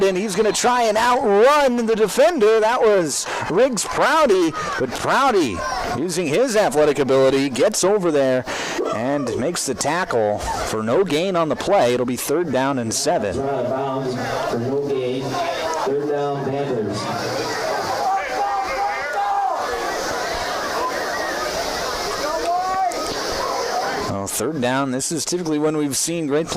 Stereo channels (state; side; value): identical; both; correlation 1.00